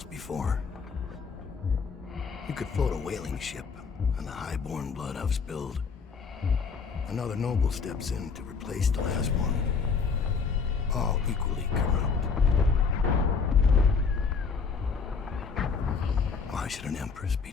before. You could float a whaling ship, and the high-born blood I've spilled. Another noble steps in to replace the last one. All equally corrupt. Why should an empress be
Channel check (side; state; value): right; quieter; 5.4 dB